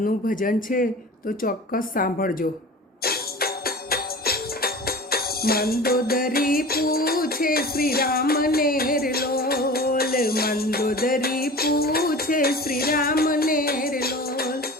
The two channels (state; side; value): normal; both; correlation 0.37